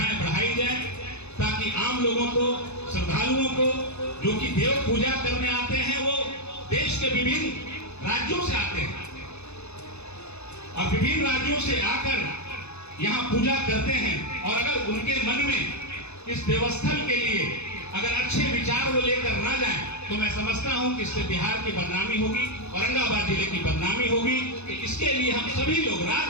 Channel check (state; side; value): late; right; 0.81 ms